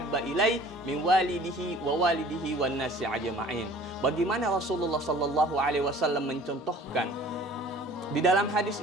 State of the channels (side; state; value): both; normal; correlation 0.48